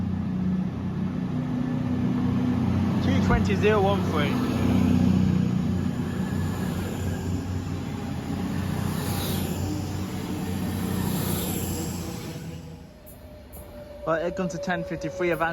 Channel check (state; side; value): identical; both; correlation 1.00